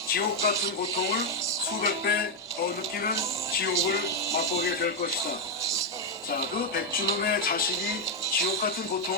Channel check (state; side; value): normal; both; correlation 0.02